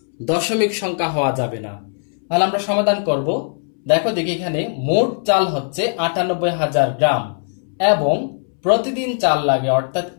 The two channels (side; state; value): right; silent; 66 dB below the other